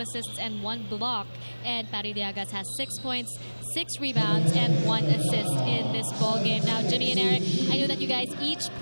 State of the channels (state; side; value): inverted; both; correlation -1.00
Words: and 1 block. And Pari Llagas has 6 points, 6 rebounds, and 1 assist in this ball game. Now, Jimmy and Eric, I know that you guys each